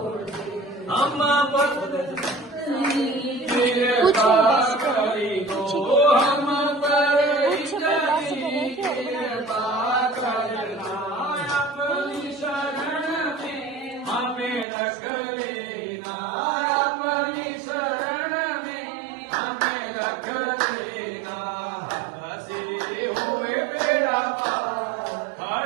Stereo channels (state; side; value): drops out; left; at 14.7 s